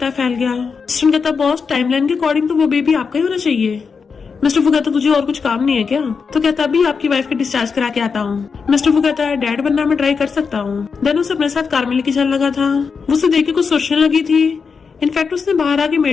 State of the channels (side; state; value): right; quieter; 5.5 dB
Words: फैल गया। असिस्टेंट कहता बॉस टाइमलाइन के अकॉर्डिंग तो वो बेबी आपका ही होना चाहिए। मिस्टर फू कहता तुझे और कुछ काम नहीं है क्या। तो कहता अभी आपकी वाइफ का डिस्चार्ज करा के आता हूँ। मिस्टर फू कहता है डैड बनना मैं ट्राई कर सकता हूँ। देन उसे अपने साथ कार में लेके चलने लगा था। वो उसे देख के कुछ सोचने लगी थी। इनफैक्ट उसने बाहर आके